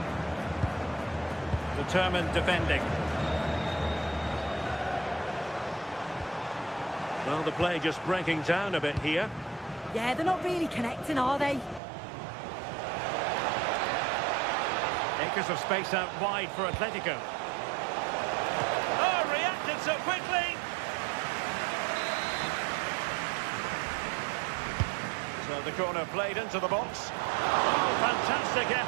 Determined defending. Well, the play just breaking down a bit here. Yeah, they're not really connecting, are they? Acres of space out wide for Atletico. Oh, reacted so quickly! So the corner played into the box. Oh, fantastic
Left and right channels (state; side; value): drops out; left; at 11.8 s